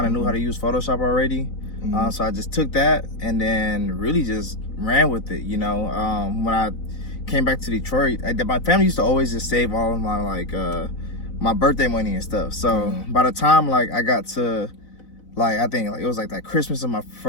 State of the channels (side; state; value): right; late; 4.0 ms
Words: of knew how to use Photoshop already. So I just took that and then really just ran with it, you know. When I came back to Detroit, my family used to always just save all of my like, my birthday money and stuff. So by the time like I got to, like, I think like it was like that Christmas of my